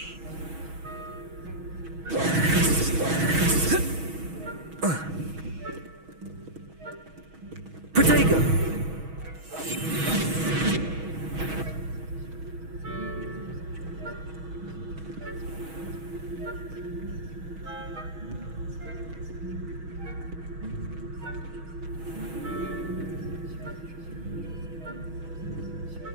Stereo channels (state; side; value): late; left; 6.2 ms